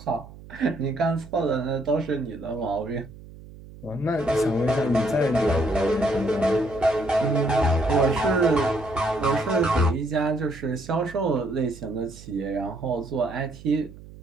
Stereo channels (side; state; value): right; noise; hum, 18 dB below the sound